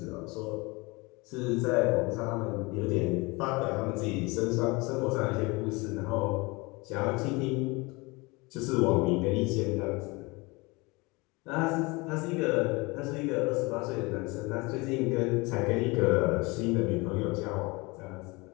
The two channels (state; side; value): quieter; right; 25.4 dB